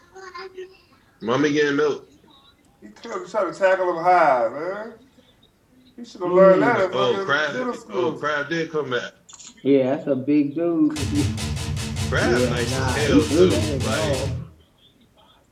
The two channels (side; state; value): both; identical; correlation 1.00